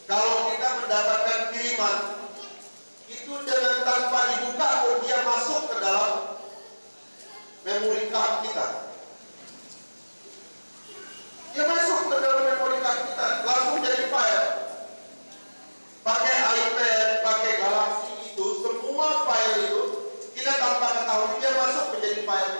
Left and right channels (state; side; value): inverted; both; correlation -1.00